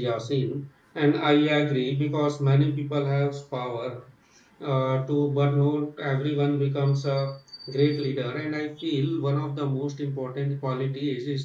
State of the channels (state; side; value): identical; both; correlation 1.00